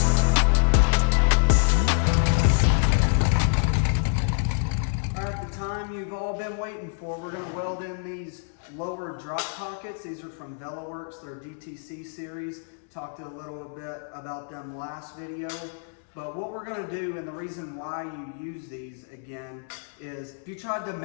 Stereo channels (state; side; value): silent; right; 61 dB below the other